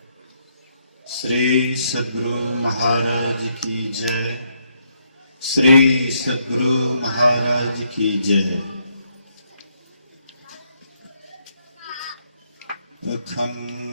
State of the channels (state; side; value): inverted; both; correlation -0.75